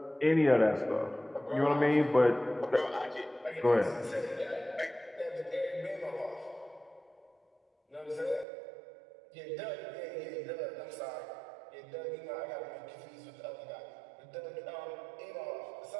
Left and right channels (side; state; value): left; drops out; at 8.5 s